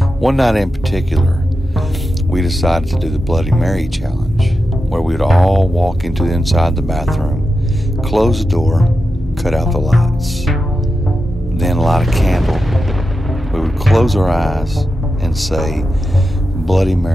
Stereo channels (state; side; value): normal; both; correlation 0.90